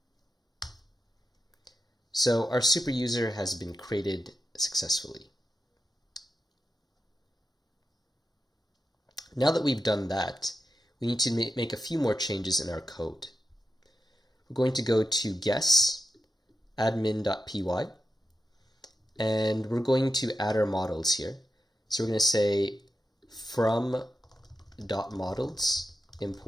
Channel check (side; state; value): both; normal; correlation 0.88